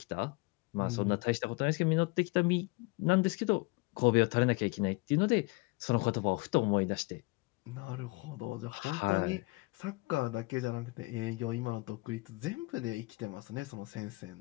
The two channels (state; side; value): quieter; right; 25.4 dB